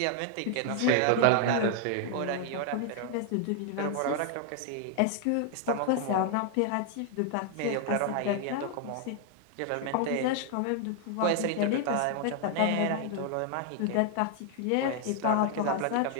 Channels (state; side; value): different; both; correlation 0.00